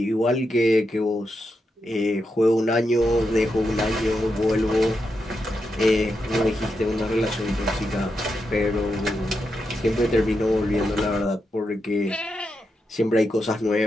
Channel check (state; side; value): normal; both; correlation 0.85